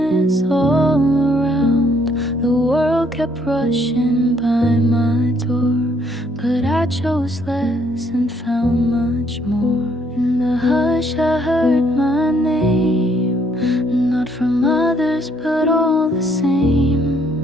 all around. The world kept rushing by my door, but I chose less and found much more. In the hush I heard my name, not from others but all the same.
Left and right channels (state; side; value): normal; both; correlation 0.68